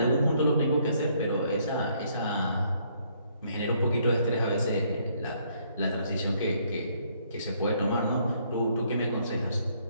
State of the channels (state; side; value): inverted; both; correlation -0.68